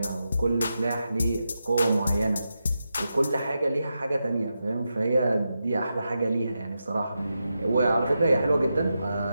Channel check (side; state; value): both; inverted; correlation -0.88